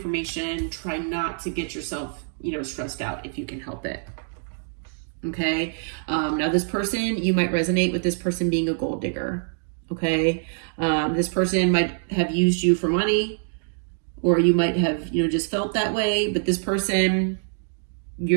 try not to get yourself, you know, stressed out if you can help it. Okay. Now this person, you might resonate with this person being a gold digger. Okay. This person might have used you for money, or you might have, you know, just felt that way, but this person,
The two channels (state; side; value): silent; left; digital silence